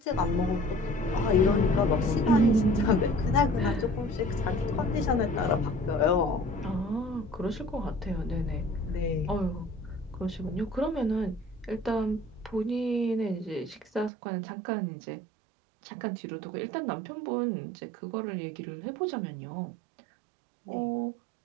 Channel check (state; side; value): drops out; left; at 14.1 s